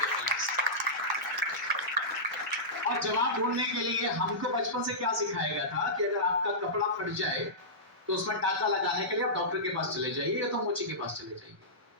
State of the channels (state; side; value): normal; both; correlation -0.16